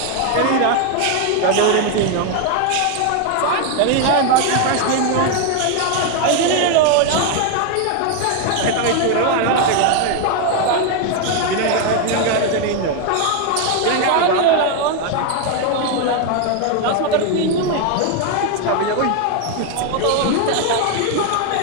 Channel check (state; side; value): different; both; correlation 0.01